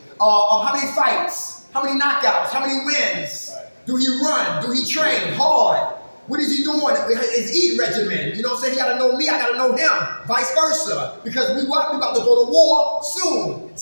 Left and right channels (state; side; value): inverted; both; correlation -1.00